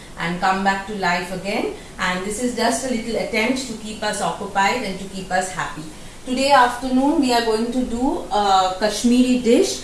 and come back to life again, and this is just a little attempt to keep us occupied and to keep us happy. Today afternoon we are going to do a Kashmiri dish,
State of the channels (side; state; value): left; noise; hum, 27 dB below the sound